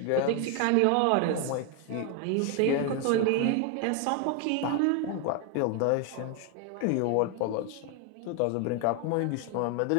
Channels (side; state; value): both; different; correlation 0.01